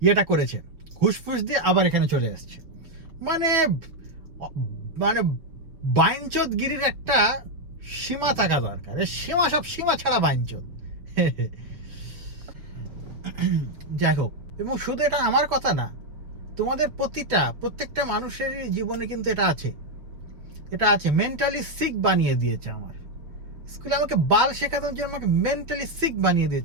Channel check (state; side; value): late; left; 6.0 ms